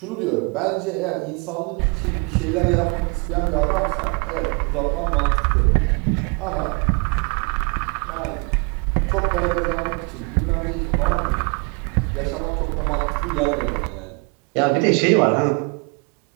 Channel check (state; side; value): quieter; left; 32.7 dB